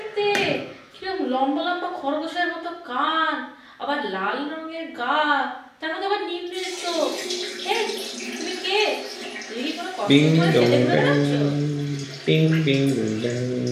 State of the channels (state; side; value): identical; both; correlation 1.00